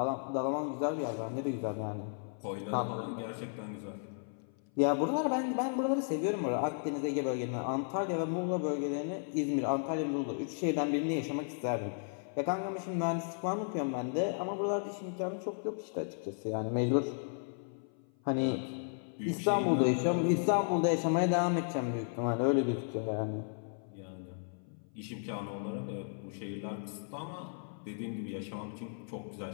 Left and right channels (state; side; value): silent; right; 55 dB below the other